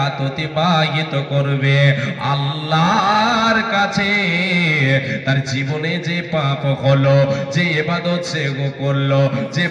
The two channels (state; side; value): identical; both; correlation 1.00